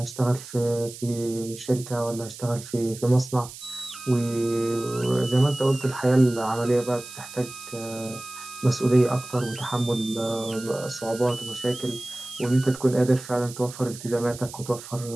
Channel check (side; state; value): right; noise; hiss, 14 dB below the sound